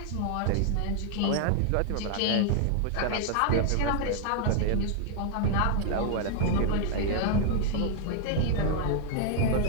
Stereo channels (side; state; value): both; different; correlation 0.00